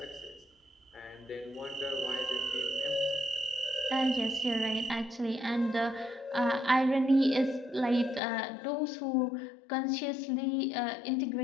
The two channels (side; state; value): right; drops out; at 8.2 s